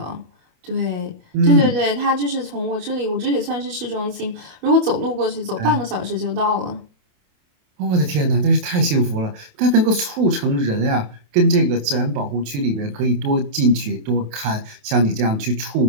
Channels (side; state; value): left; late; 27 ms